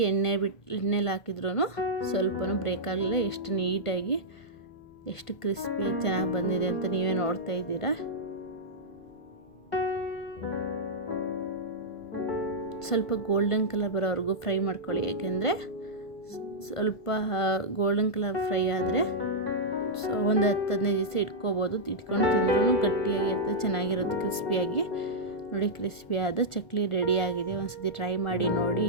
ಎಣ್ಣೆಲಿ ಹಾಕಿದ್ರೂ ಸ್ವಲ್ಪನೂ ಬ್ರೇಕ್ ಆಗಲಿಲ್ಲ. ಎಷ್ಟು ನೀಟಾಗಿ ಎಷ್ಟು ಕ್ರಿಸ್ಪಿಯಾಗಿ ಚೆನ್ನಾಗಿ ಬಂದಿದೆ ಅಂತ ನೀವೇ ನೋಡ್ತಾ ಇದ್ದೀರಾ. ಸ್ವಲ್ಪ ಗೋಲ್ಡನ್ ಕಲರ್ ಬರೋವರೆಗೂ ಫ್ರೈ ಮಾಡ್ಕೊಳ್ಳಿ. ಏಕೆಂದರೆ ಸ್ವಲ್ಪ ಗೋಲ್ಡನ್ ಕಲರ್ ಫ್ರೈ ಆದರೆ ಒಂದು 10-15 ದಿವಸ ಇಟ್ಕೋಬೋದು. ಇಟ್ಕೊಂಡು ತಿಂದ್ರೂ ಗಟ್ಟಿಯಾಗಿರುತ್ತೆ, ಚೆನ್ನಾಗಿರುತ್ತೆ ಕ್ರಿಸ್ಪಿಯಾಗಿ. ನೋಡಿ ಕ್ರಿಸ್ಪಿಯಾದ ಚಕ್ಲಿ ರೆಡಿಯಾಗಿದೆ. ಒಂದ್ಸತಿ ಟ್ರೈ ಮಾಡಿ ನೋಡಿ.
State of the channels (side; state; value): right; late; 1.5 ms